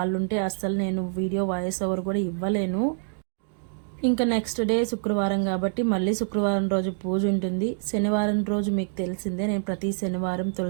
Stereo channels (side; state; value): left; silent; digital silence